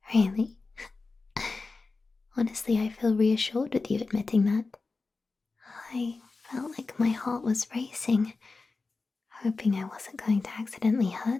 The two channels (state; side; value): quieter; right; 3.9 dB